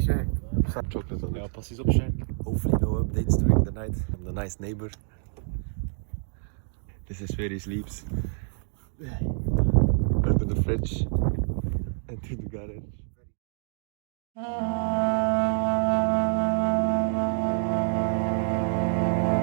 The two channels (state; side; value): silent; left; 60 dB below the other